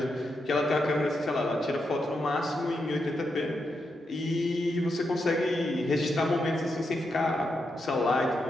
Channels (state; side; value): normal; both; correlation 0.84